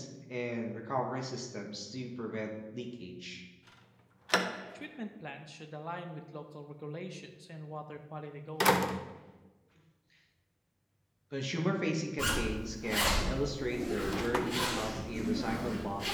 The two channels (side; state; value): both; identical; correlation 1.00